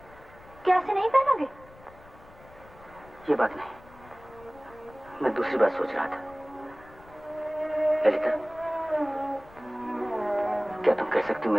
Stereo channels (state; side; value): noise; left; rumble, 22 dB below the sound